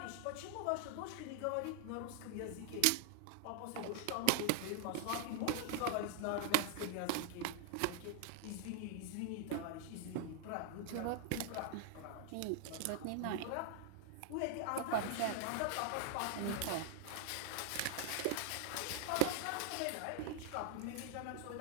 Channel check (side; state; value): both; different; correlation 0.00